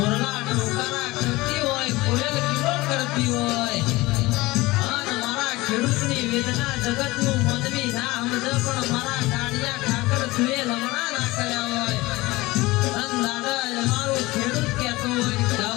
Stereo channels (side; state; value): right; quieter; 20.8 dB